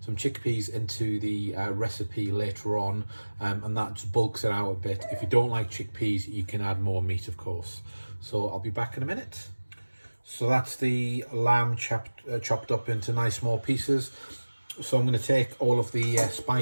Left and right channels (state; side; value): inverted; both; correlation -1.00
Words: chickpeas into the recipe later on, and that just bulks it out a bit. If you don't like chickpeas, you can add more meat, of course. So I'll be back in a minute. So that's the lamb chopped up into nice small pieces. So I'm going to take all of the